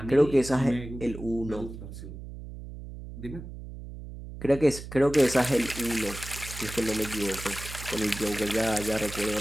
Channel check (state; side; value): noise; right; hum, 12 dB below the sound